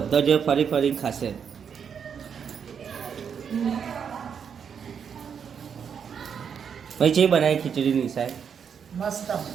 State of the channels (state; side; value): quieter; left; 7.2 dB